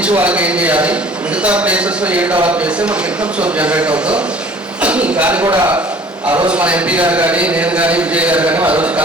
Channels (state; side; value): normal; both; correlation 0.50